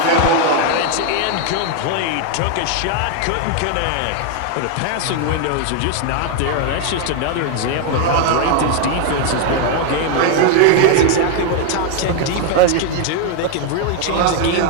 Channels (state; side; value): different; both; correlation 0.01